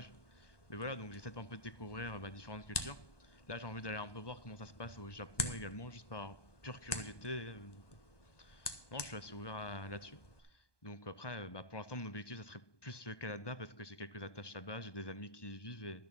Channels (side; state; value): right; late; 1.2 ms